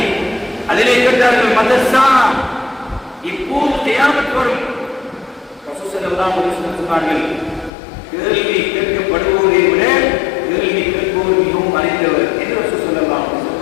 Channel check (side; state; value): right; drops out; at 7.7 s